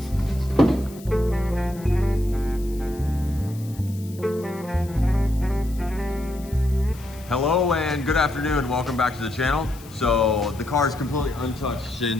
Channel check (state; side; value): noise; left; hiss, 21 dB below the sound